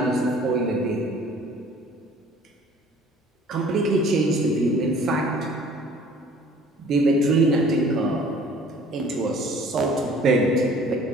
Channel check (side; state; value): both; normal; correlation 0.52